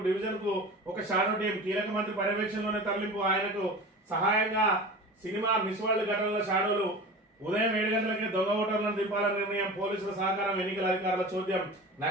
డివిజన్ కు ఒక షాడో టీం, కీలక మంత్రి పర్యవేక్షణలోనే తరలింపు, ఆయనకు సహాయంగా సినిమా మిస్ వరల్డ్ ఘటనల షాడోలు. ఉదయం 7 గంటలకే దొంగ ఓటర్లను దింపాలని నిర్ణయం, పోలీసుల సహకారం, ఎన్నికల అధికారుల చోద్యం.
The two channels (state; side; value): normal; both; correlation 0.34